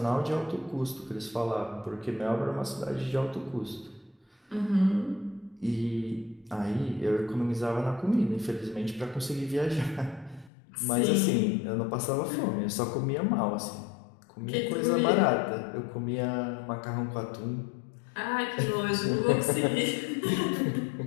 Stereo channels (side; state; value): right; drops out; at 10.5 s